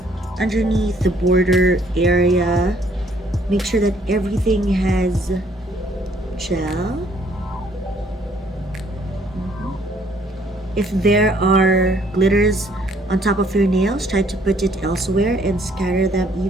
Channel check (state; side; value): normal; both; correlation 0.63